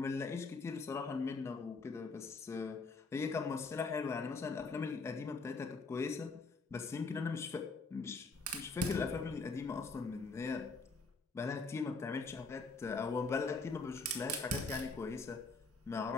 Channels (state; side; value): quieter; right; 3.9 dB